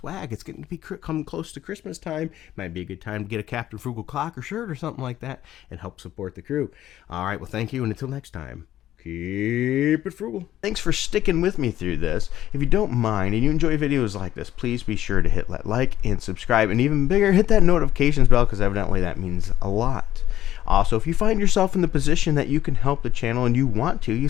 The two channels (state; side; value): quieter; right; 12.8 dB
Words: It's getting to be come close to Christmas time. Might be a good time to get a Captain Frugal clock or shirt or something like that and help support the crew. All right, well, thank you, and until next time, keep it frugal. Thanks for sticking with me through this. If you don't mind and you enjoy videos like this, please be sure to hit that like and subscribe, and even bigger, hit that notifications bell, because evidently that means a lot. Also, if you find yourself in the position that you can help the channel and you want to, you